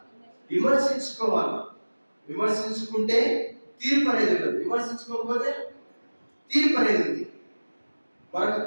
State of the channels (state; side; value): inverted; both; correlation -1.00